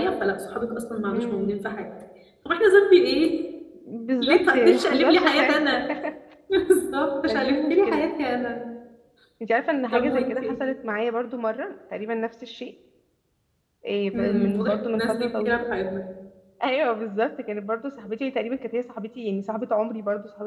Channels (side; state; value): both; identical; correlation 1.00